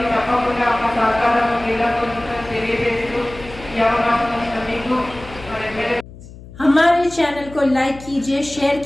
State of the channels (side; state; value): left; noise; hum, 17 dB below the sound